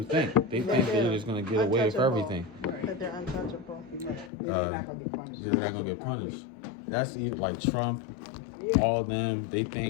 think. They think they're just going to get away with everything. That they're untouchable. They're not going to get punished. They're not going to get punished. That's even like Trump, all of them, they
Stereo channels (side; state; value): right; drops out; at 4.3 s